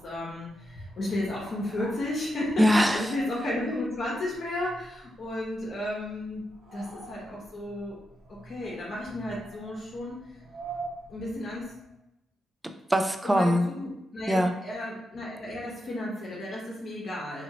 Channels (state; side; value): normal; both; correlation 0.87